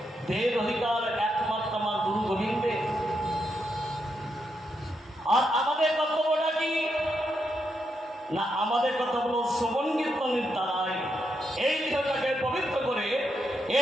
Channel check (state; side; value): normal; both; correlation 0.82